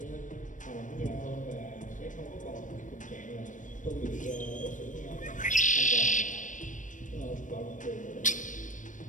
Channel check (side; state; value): right; late; 0.37 ms